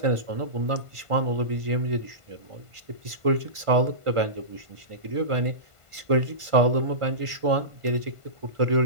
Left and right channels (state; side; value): late; left; 1.5 ms